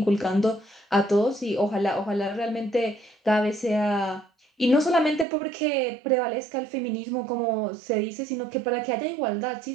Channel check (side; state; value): left; drops out; at 5.2 s